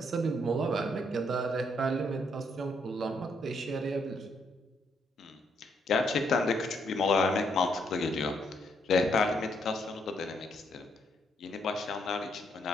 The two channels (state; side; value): normal; both; correlation 0.73